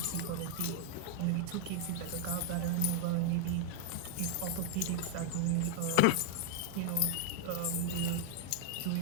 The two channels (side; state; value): both; different; correlation 0.00